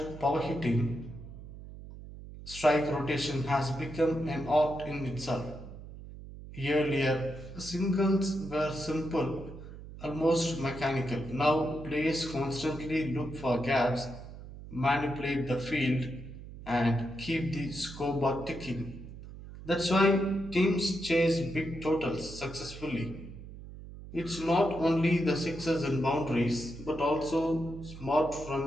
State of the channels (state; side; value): noise; right; hum, 14 dB below the sound